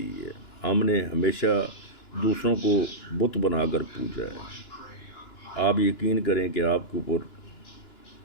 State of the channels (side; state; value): right; late; 2.9 ms